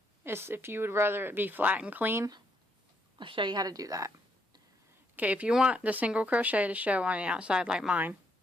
If you would rather it be flat and clean, I'll show you how to do that. Okay, if you want the single crochet to show on the outside like mine,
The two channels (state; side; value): normal; both; correlation 0.74